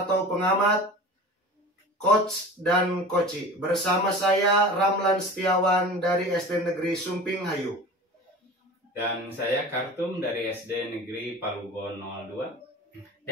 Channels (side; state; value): both; normal; correlation 0.36